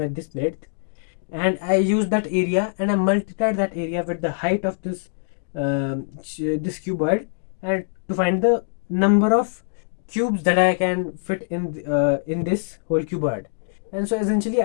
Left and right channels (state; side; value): silent; right; digital silence